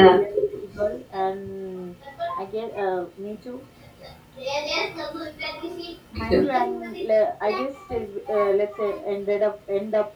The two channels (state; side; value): identical; both; correlation 1.00